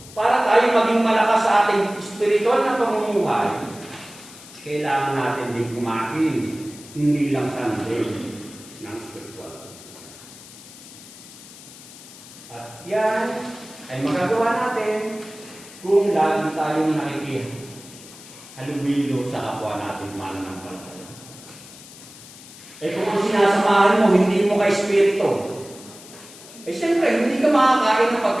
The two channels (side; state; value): left; noise; hiss, 18 dB below the sound